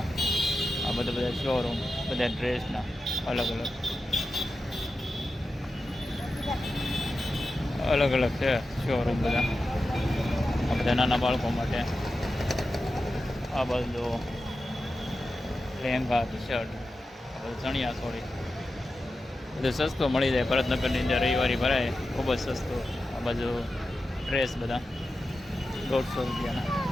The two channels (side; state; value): both; normal; correlation 0.91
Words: આ બધા શોરૂમ બધા ડ્રેસના અલગ અલગ છે શોરૂમ બધા. આ બધા નાના બાળકો માટે. આ બધું લહેંગા ટી શર્ટ, આ બધું ચણિયા ચોળી બધું સસ્તું મળી જાય ભરતનગરની અંદર. રવિવારી ભરાય ખૂબ જ સસ્તું. આ બાજુ ડ્રેસ બધા ₹150.